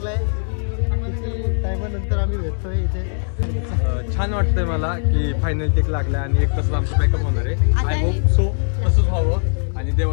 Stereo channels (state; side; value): silent; right; digital silence